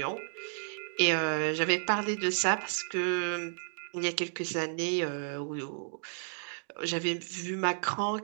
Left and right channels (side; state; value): left; silent; digital silence